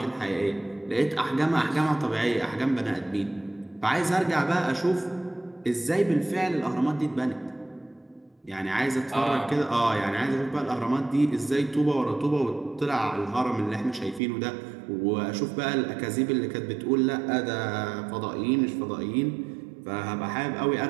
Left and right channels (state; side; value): drops out; left; at 14.2 s